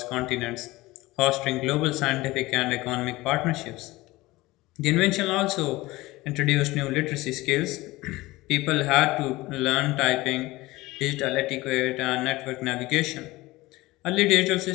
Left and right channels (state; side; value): quieter; right; 19.8 dB